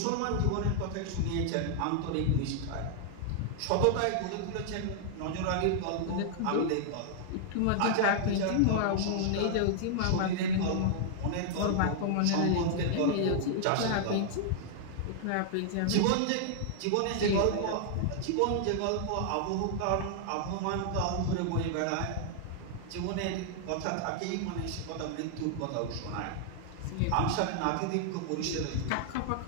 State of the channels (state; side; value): different; both; correlation 0.00